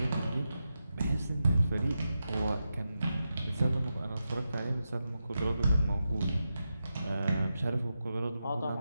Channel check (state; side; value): inverted; both; correlation -0.89